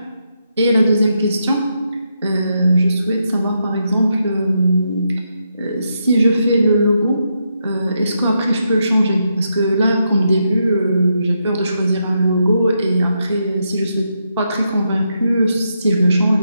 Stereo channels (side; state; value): both; inverted; correlation -0.81